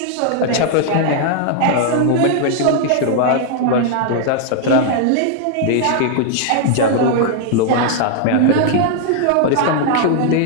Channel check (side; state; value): both; different; correlation 0.00